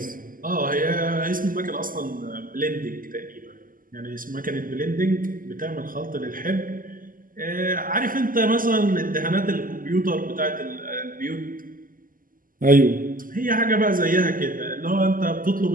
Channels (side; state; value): left; late; 0.41 ms